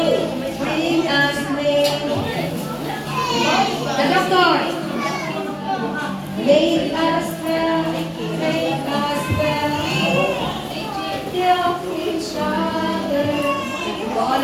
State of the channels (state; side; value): identical; both; correlation 1.00